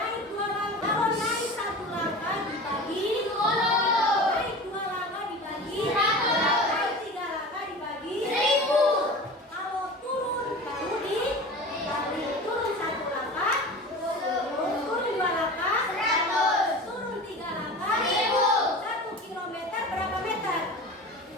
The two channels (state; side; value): normal; both; correlation 0.35